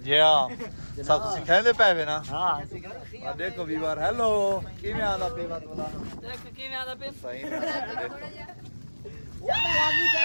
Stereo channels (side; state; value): both; inverted; correlation -1.00